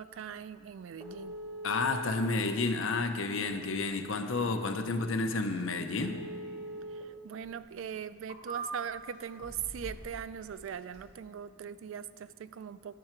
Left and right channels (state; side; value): normal; both; correlation 0.27